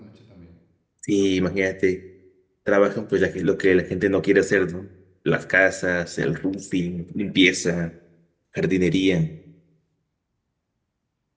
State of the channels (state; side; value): identical; both; correlation 1.00